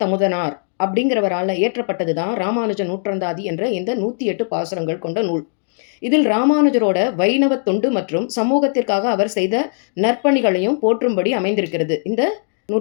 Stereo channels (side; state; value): right; silent; digital silence